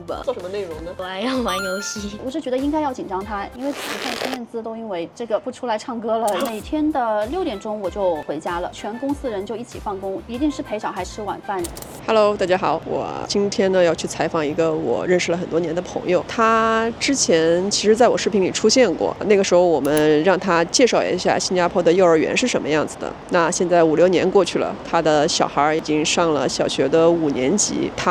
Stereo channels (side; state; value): both; identical; correlation 1.00